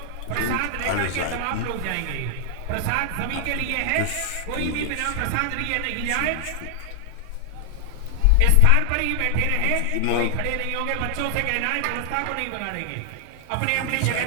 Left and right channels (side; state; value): both; different; correlation 0.00